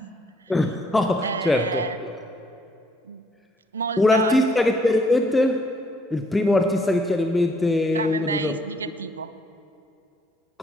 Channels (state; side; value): normal; both; correlation 0.68